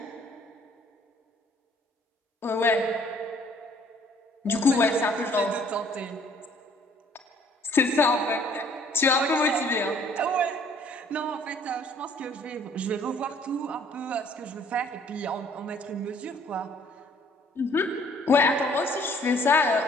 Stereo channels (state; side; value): normal; both; correlation 0.59